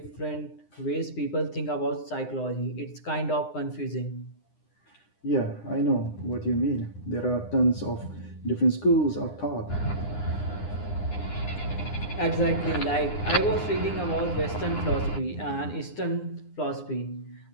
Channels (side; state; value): right; late; 9.8 ms